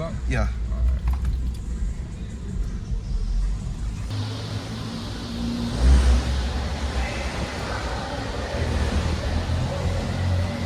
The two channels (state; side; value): identical; both; correlation 1.00